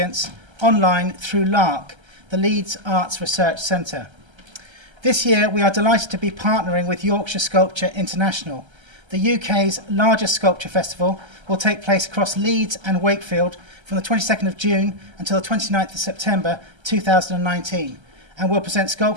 online through LARC, the Leeds Arts Research Centre. This year, we are delighted to be partnering with Yorkshire Sculpture International. The UK's largest sculpture festival will take place across Leeds and Wakefield from the 22nd of June until the 29th of September 2019, and will present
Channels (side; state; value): left; late; 1.3 ms